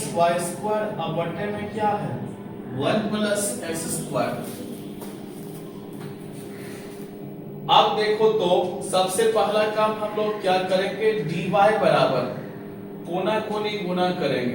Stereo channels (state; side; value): identical; both; correlation 1.00